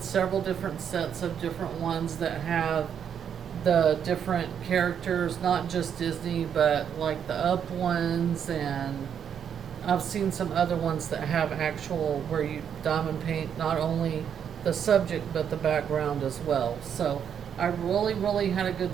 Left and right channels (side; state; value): left; quieter; 8.2 dB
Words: several different sets of different ones that have the different characters, not just Disney, but like the Up ones, and I've seen some other ones that have actual where you diamond paint not only the subject but the background as well. So I really had a good